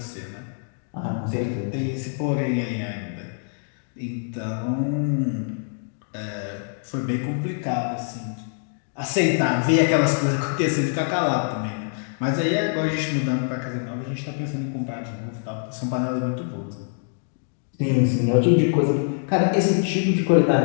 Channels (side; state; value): right; silent; digital silence